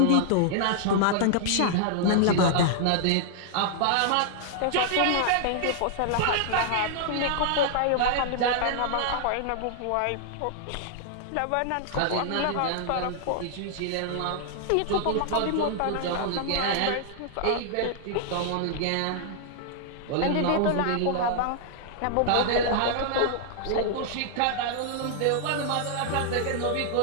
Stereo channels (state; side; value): different; both; correlation -0.01